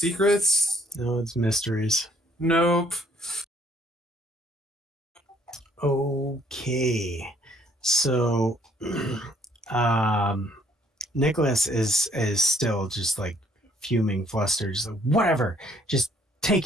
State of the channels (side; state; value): both; normal; correlation 0.65